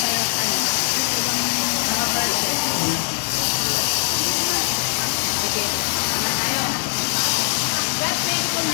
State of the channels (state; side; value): silent; right; digital silence